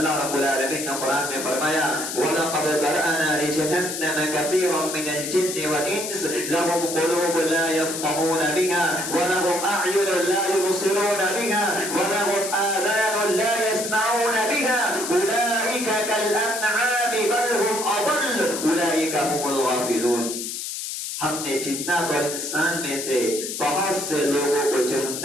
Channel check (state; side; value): noise; left; hiss, 5 dB below the sound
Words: رب العالمین نے قرآن میں فرمایا وَلَقَدْ ذَرَأْنَا لِجَهَنَّمَ كَثِيرًا مِنَ الْجِنِّ وَالْإِنسِ لَهُمْ قُلُوبٌ لَا يَفْقَهُونَ بِهَا وَلَهُمْ أَعْيُنٌ لَا يُبْصِرُونَ بِهَا وَلَهُمْ آذَانٌ لَا يَسْمَعُونَ بِهَا أُولَئِكَ كَالْأَنْعَامِ بَلْ هُمْ أَضَلُّ أُولَئِكَ هُمُ الْغَافِلُونَ. ہم نے جنات اور انسان میں سے بہت سے لوگوں کو